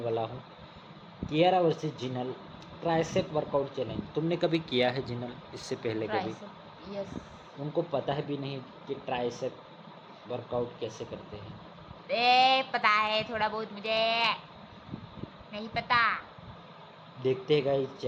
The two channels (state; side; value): identical; both; correlation 1.00